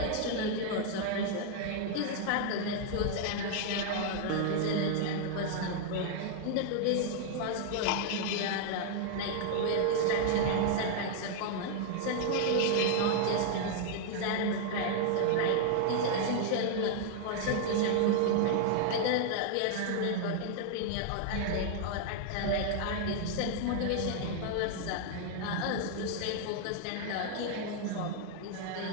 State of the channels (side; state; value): both; different; correlation 0.00